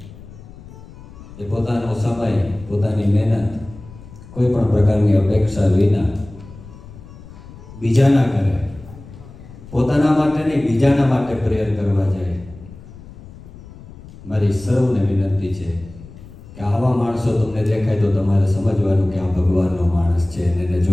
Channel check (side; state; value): left; noise; rumble, 18 dB below the sound